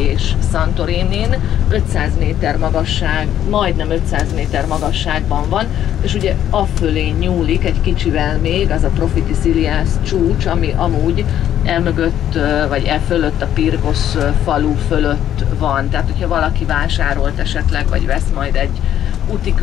Santorinin, 500 méter magasság, majdnem 500 méter magasságban van, és ugye afölé nyúlik egy kicsivel még az a Profiti Silias csúcs, ami amúgy elmögött, vagy fölött a Pirgosz falu fölött van. Tehát, hogyha valaki vásárolt esetleg, vagy vesz majd egy úti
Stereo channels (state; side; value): quieter; right; 10.9 dB